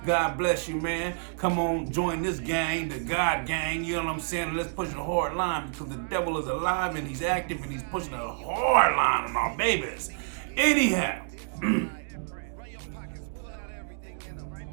God bless you, man. Come on, join this gang, the God gang. You know what I'm saying? Let's push a hard line because the devil is alive and he's active and he's pushing a hard line on our babies. Anyhow,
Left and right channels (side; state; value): left; silent; digital silence